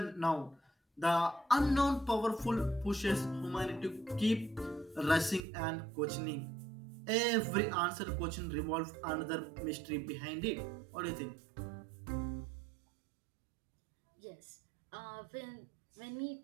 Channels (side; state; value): left; drops out; at 5.5 s